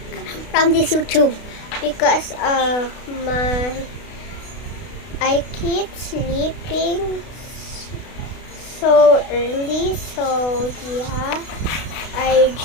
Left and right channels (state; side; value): late; right; 32 ms